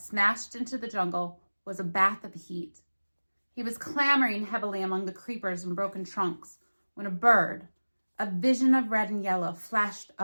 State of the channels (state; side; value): inverted; both; correlation -1.00